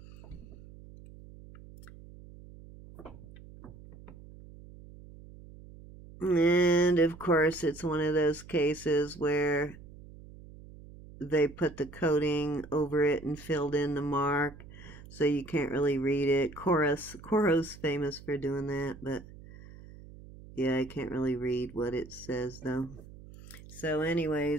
And of course, it's one of those cases where they put the coating over it and filled in the mark, so you can't really read it. Coro's famous for doing that, but yeah, I can't really read what it says though. So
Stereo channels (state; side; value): noise; right; hum, 18 dB below the sound